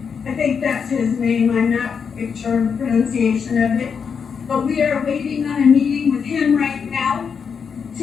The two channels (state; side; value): quieter; right; 6.4 dB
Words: think that's his name. I'm not sure of the pronunciation of it. But we are waiting on a meeting with him right now